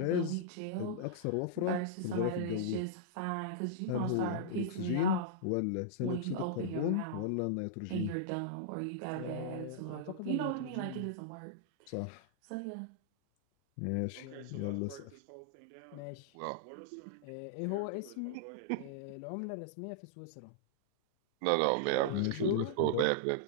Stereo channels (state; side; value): different; both; correlation -0.02